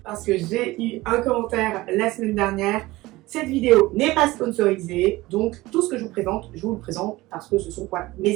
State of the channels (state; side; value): quieter; left; 19.3 dB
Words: parce que j'ai eu un commentaire la semaine dernière. Cette vidéo n'est pas sponsorisée, donc tout ce que je vous le présente parce que ce sont mes